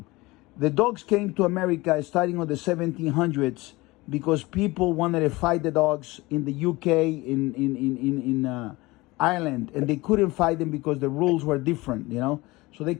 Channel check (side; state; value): right; quieter; 21.5 dB